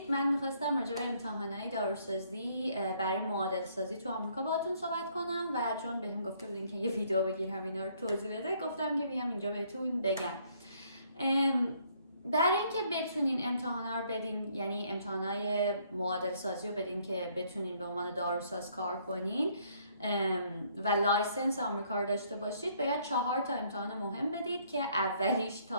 من میخواستم راجع به امتحانات داروسازی برای معادل سازی تو آمریکا باهاتون صحبت کنم و چون بهم گفته بودین که یه ویدیو بگیرم اینا رو توضیح بده، گفتم که بیام اینجا بهتون بگم. برای اینکه بتونین امتحانا رو بدین، یعنی امتحانات معادل سازی رو بدین که بتونین به عنوان داروساز کار کنین و لایسنس آمریکا رو داشته باشید، باید 4 تا امتحان مهم بدید که اولیش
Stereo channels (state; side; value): inverted; both; correlation -0.66